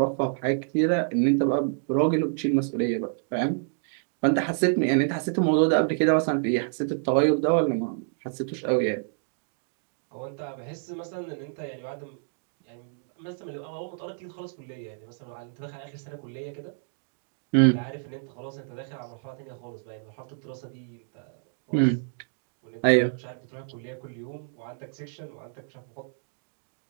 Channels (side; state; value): left; silent; digital silence